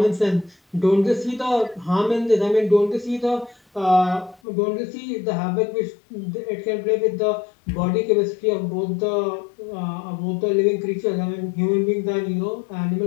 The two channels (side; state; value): right; drops out; at 4.4 s